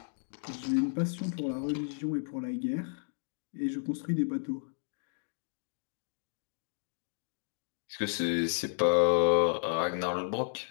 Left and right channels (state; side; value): silent; right; digital silence